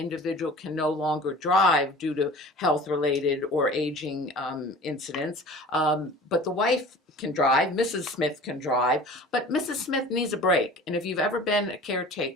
can no longer drive due to health-related or aging incidents. But the wife can drive, Mrs. Smith can drive, but Mrs. Smith needs a break. And if you've ever been a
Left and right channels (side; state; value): both; normal; correlation 0.42